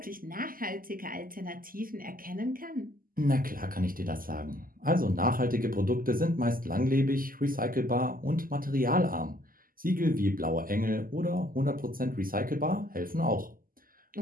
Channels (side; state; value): left; late; 0.41 ms